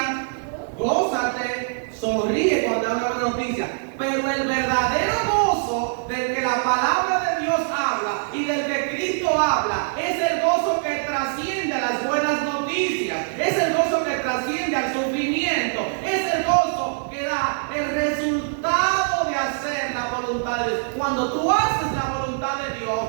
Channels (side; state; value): left; silent; digital silence